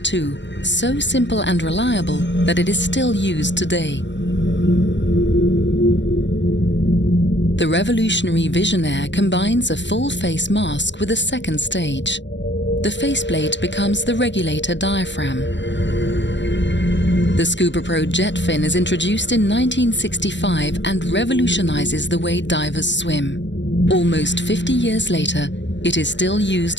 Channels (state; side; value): late; right; 0.53 ms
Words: II, so simple and reliable that it is still used today. The revolutionary VISIONAIRE combines a full-face mask with a second stage. The faceplate becomes the regulator diaphragm. The ScubaPro jet fin is introduced in 1965 and revolutionizes the way divers swim. Almost 50 years later, it is still